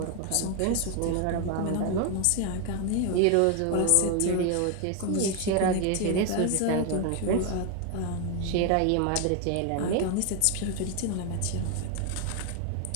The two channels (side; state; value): both; different; correlation 0.01